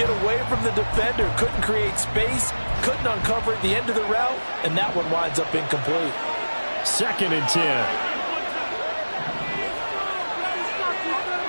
away from the defender, couldn't create space, couldn't uncover at the end of the route, and that one winds up incomplete. 2nd and 10.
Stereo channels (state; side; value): inverted; both; correlation -1.00